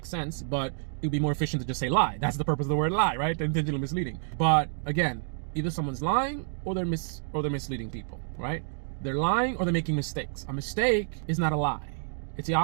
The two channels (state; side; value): silent; left; digital silence